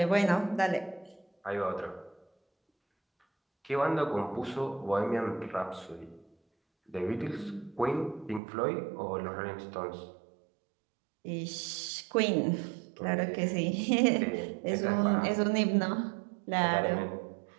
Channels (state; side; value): drops out; left; at 8.4 s